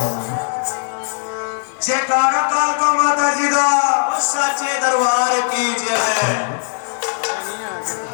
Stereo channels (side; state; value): right; silent; digital silence